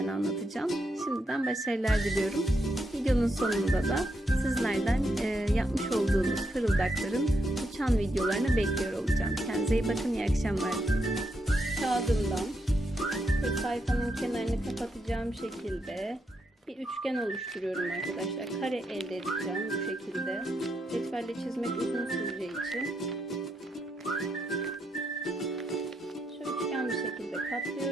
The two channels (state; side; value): normal; both; correlation 0.81